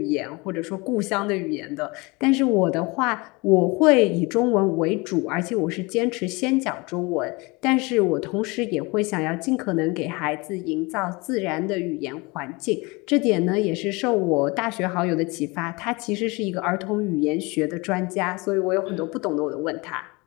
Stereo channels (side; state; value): right; quieter; 25.8 dB